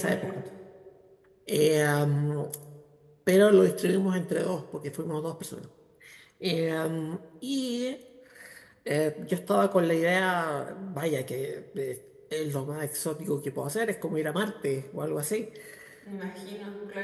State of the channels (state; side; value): identical; both; correlation 1.00